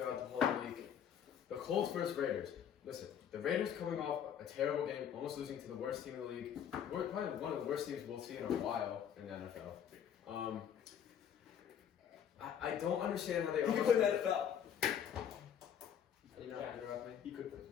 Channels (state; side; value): quieter; right; 8.8 dB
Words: the whole week. The Colts versus Raiders. Listen, the Raiders coming off a terrible game, almost losing to the worst team in the league. We're probably one of the worst teams we'll see in a while in the NFL. I don't understand how they You can play in the NFL. Are you not interrupt me? You could play.